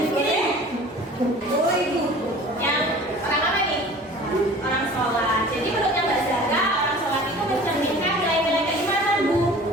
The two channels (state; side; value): normal; both; correlation 0.44